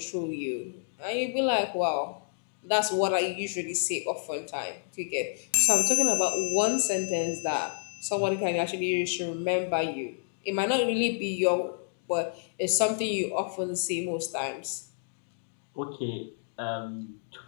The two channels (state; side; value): silent; right; digital silence